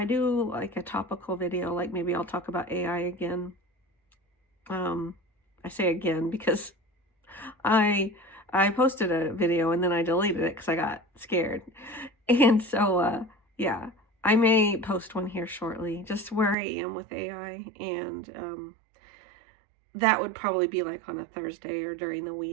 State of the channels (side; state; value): left; drops out; at 16.6 s